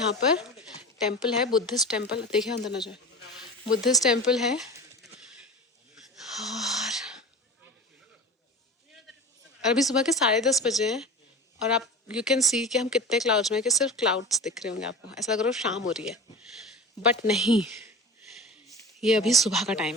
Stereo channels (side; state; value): both; normal; correlation 0.33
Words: पर टेम्पल है, बुद्धिस्ट टेम्पल. देखिए अंदर न जाए. बुद्धिस्ट टेम्पल है. और अभी सुबह के 10:30 बजे हैं और आप यू कैन सी कि हम कितने क्लाउड्स में हैं कि सिर्फ क्लाउड्स दिख रहे होंगे आपको. ऐसा लग रहा है शाम हो रही है बट नहीं, ये अभी सुबह का